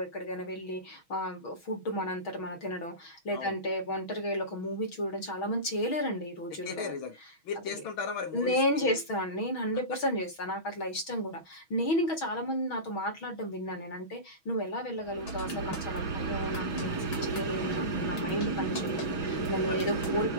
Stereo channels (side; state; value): right; late; 6.2 ms